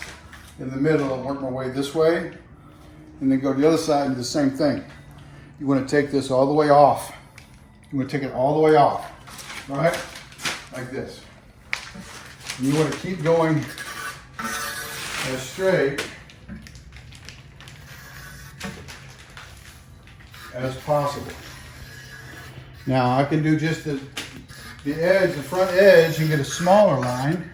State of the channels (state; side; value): identical; both; correlation 1.00